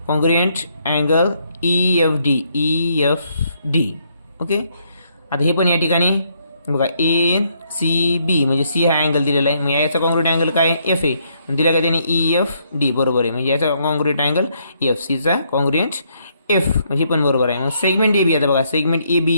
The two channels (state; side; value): inverted; both; correlation -0.72